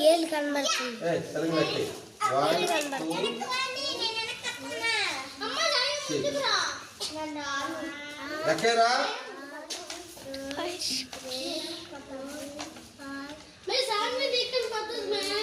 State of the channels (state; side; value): identical; both; correlation 1.00